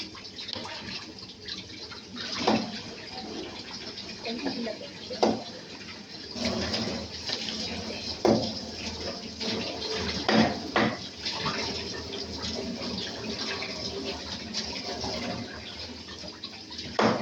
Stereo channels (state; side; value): identical; both; correlation 1.00